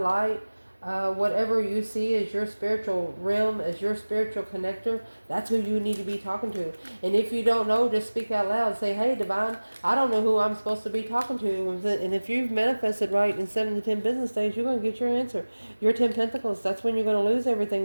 light. Whatever you see as your spiritual realm, as your spiritual connector, that's who you need to be talking to. And if you don't know, just speak out loud. Say, hey, divine, I don't know who I'm supposed to be talking to. And if you've manifested right in 7 to 10 business days, you're going to get your answer. Your 10 pentacles, that's when you're going to lose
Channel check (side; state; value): both; inverted; correlation -1.00